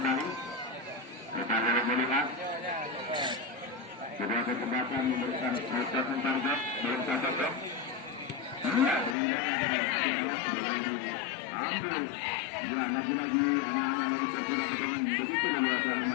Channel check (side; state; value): right; drops out; at 9.2 s